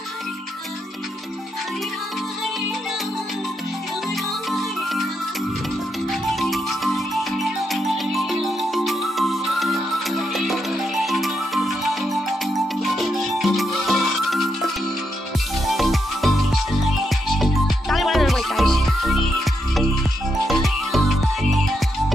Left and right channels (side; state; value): both; normal; correlation 0.82